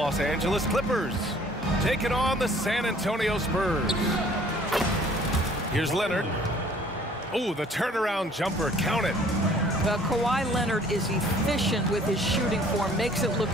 Angeles Clippers taking on the San Antonio Spurs. Here's Leonard. Oh, the turnaround jumper, count it. Well, Kawhi Leonard is efficient with his shooting form, makes it look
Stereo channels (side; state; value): both; normal; correlation 0.55